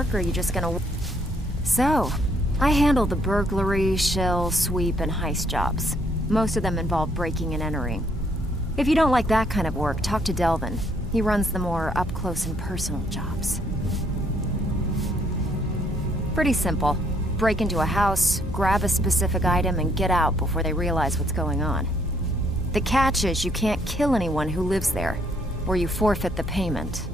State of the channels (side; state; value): both; normal; correlation 0.68